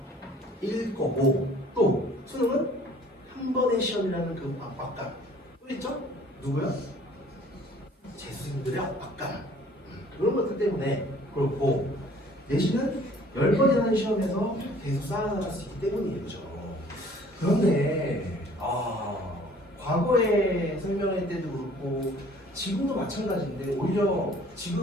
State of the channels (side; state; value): both; normal; correlation 0.54